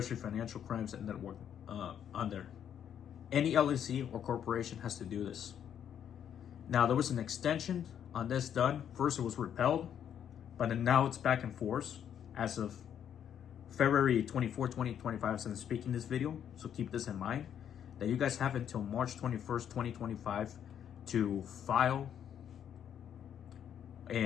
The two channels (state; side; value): quieter; right; 9.2 dB